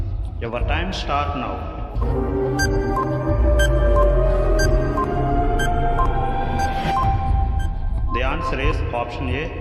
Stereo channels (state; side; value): identical; both; correlation 1.00